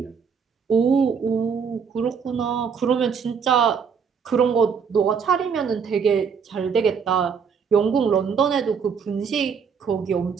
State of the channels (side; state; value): left; quieter; 6.3 dB